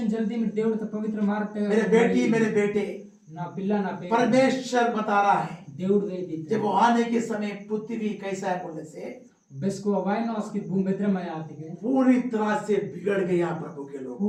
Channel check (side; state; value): both; identical; correlation 1.00